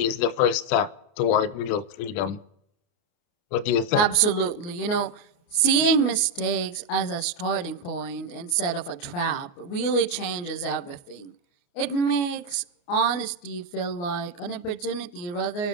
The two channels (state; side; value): late; right; 29 ms